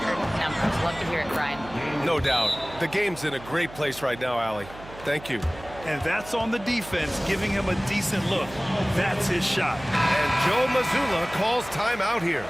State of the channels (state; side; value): noise; right; hum, 16 dB below the sound